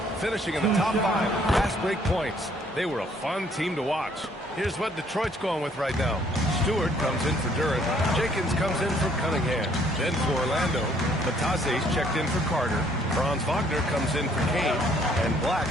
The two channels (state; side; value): normal; both; correlation 0.63